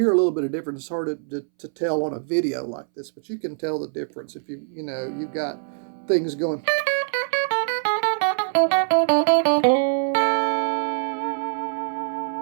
a little bit of difference. It's hard to tell on a video like this, but you can tell the difference if you've got things going.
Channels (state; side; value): silent; left; 63 dB below the other